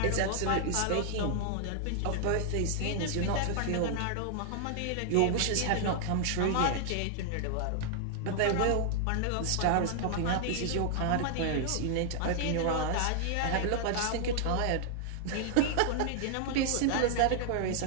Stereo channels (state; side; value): different; both; correlation 0.00